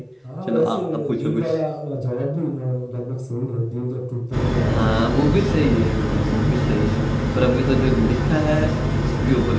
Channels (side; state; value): both; identical; correlation 1.00